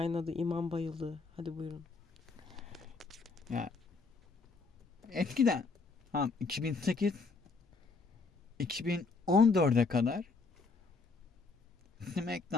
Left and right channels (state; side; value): quieter; right; 4.1 dB